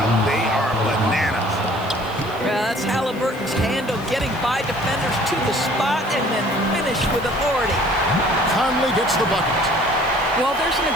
They are bananas. That's Halliburton's handle, getting by defenders to the spot and then finish with authority. Conley gets the bucket. Well, there's an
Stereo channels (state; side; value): noise; left; hiss, 23 dB below the sound